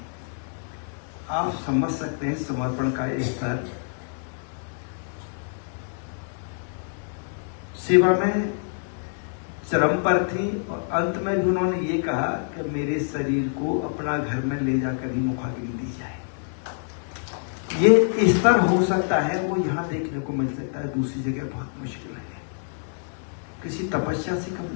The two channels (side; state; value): right; silent; digital silence